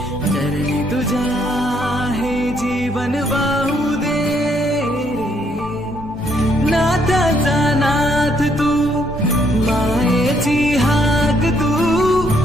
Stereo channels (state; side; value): normal; both; correlation 0.71